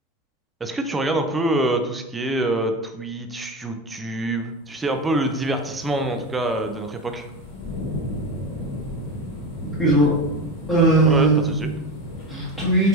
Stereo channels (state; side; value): normal; both; correlation 0.24